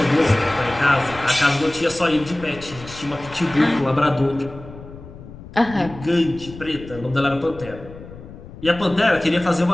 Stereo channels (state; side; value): noise; left; rumble, 16 dB below the sound